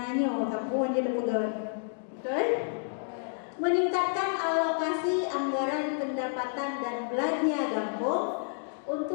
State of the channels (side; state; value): right; silent; digital silence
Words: kapuan dia pegang, betul? Meningkatkan alokasi anggaran pendapatan dan belanja kampung